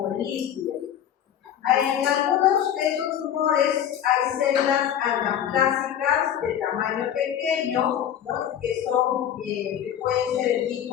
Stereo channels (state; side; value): quieter; right; 9.9 dB